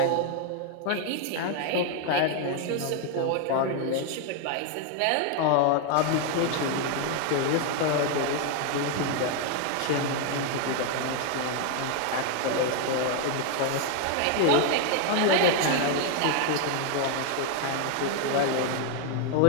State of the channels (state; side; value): different; both; correlation 0.01